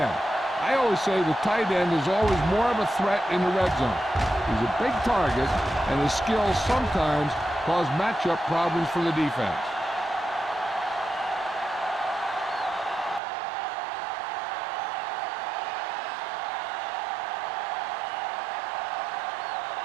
I always say the tight end is always more of a threat in the red zone. He's a big target, and his skills sometimes cause matchup problems for the defense.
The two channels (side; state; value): left; drops out; at 13.2 s